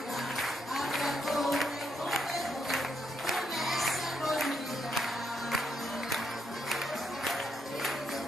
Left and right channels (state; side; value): normal; both; correlation 0.77